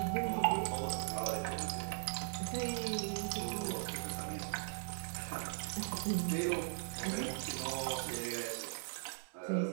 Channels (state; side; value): silent; left; digital silence